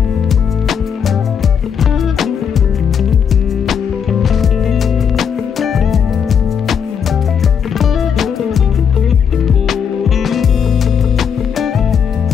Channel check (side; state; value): right; quieter; 7.3 dB